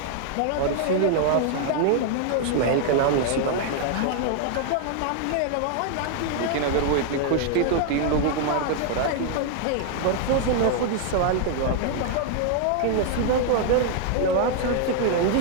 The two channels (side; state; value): both; different; correlation 0.00